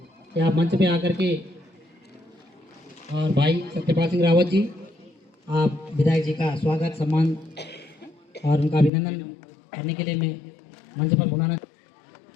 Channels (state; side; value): drops out; right; at 8.9 s